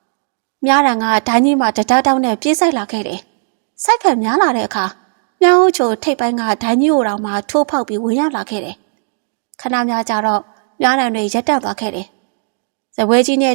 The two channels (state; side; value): silent; left; 65 dB below the other